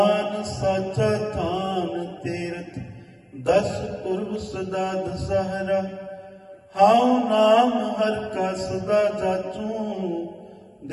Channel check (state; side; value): identical; both; correlation 1.00